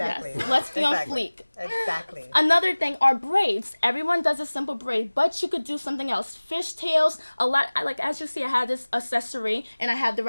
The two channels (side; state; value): both; inverted; correlation -1.00